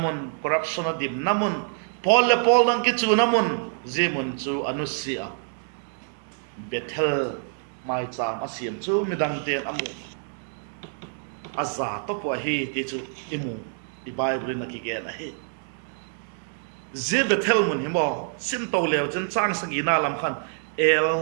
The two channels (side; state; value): left; silent; 61 dB below the other